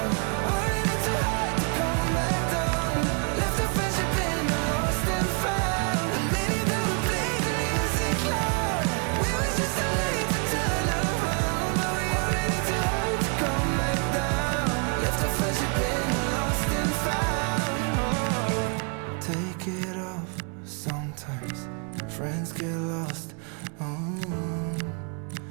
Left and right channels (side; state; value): left; quieter; 38.8 dB